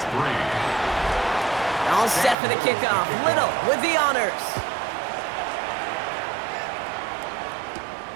3. All set for the kickoff. Little with the honors.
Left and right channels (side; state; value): left; drops out; at 2.4 s